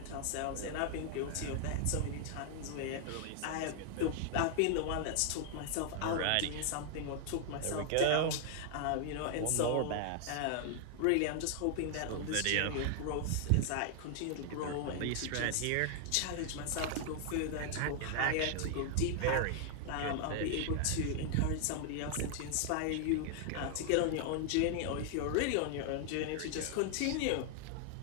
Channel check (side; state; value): both; different; correlation 0.00